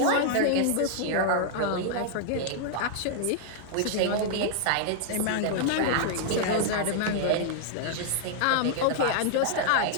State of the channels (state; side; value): different; both; correlation 0.00